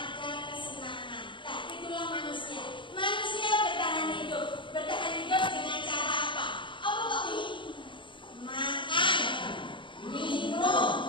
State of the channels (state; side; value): late; right; 0.24 ms